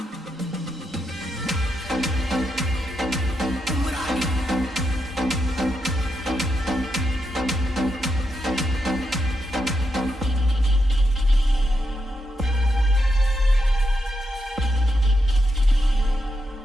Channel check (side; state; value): both; normal; correlation 0.83